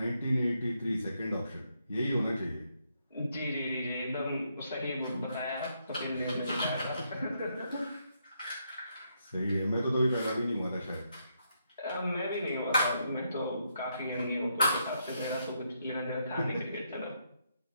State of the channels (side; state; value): both; inverted; correlation -0.78